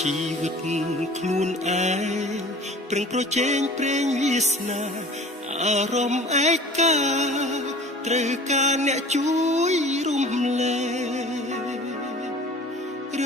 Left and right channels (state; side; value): normal; both; correlation 0.44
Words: ីវិតខ្លួនឯងប្រឹងប្រជែងព្រេងវាសនាអារម្មណ៍ឯកាត្រូវការអ្នកជួយរំលែករឿ